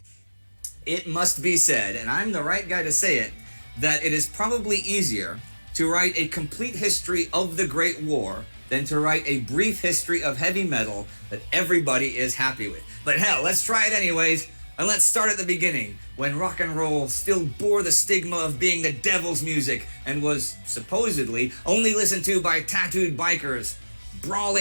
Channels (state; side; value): inverted; both; correlation -1.00